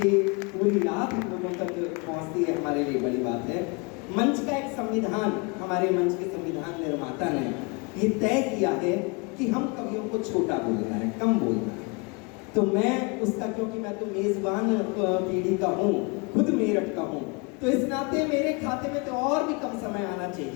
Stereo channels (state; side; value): quieter; right; 30.5 dB